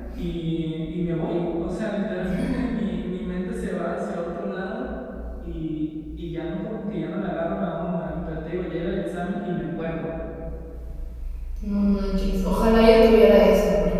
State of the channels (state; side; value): identical; both; correlation 1.00